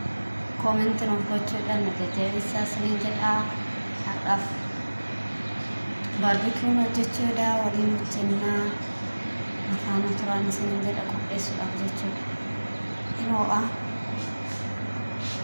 كومنت نوفلوتشو لأن تجيسا سنين جدا حرف barbecue hojjechuudha waliin hojjennaa afaan turaan isiniin jedha qopheessuudhaaf jechuudha inoo'a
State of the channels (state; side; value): inverted; both; correlation -1.00